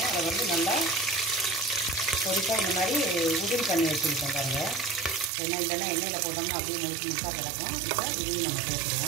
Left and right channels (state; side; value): drops out; left; at 5.3 s